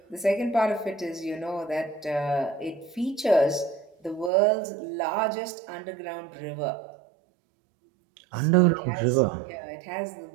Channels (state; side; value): drops out; left; at 4.3 s